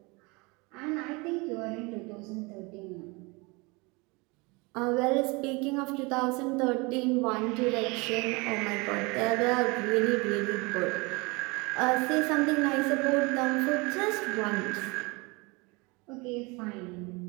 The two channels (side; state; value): left; quieter; 27.0 dB